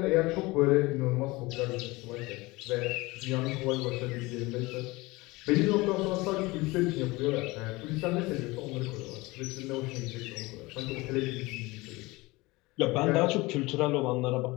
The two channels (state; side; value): quieter; right; 22.3 dB